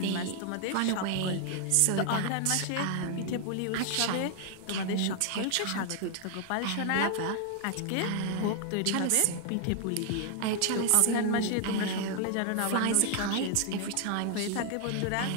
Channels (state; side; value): different; both; correlation 0.00